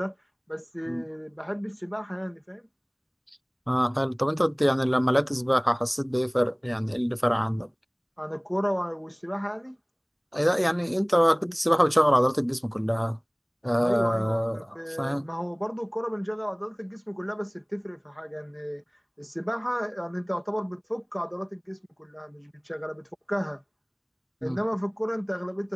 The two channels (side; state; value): both; identical; correlation 1.00